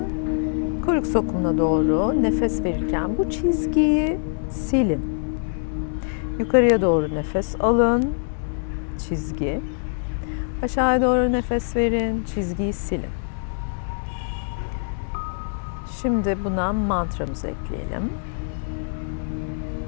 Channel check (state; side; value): silent; right; digital silence